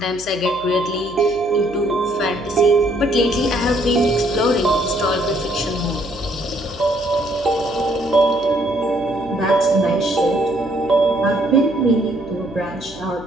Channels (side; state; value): right; noise; hum, 22 dB below the sound